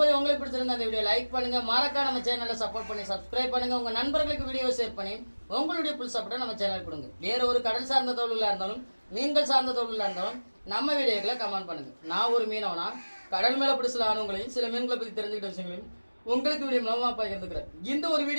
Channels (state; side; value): inverted; both; correlation -1.00